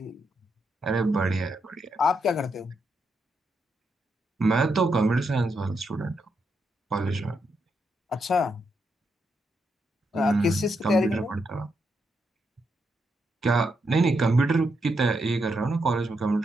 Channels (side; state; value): both; normal; correlation 0.81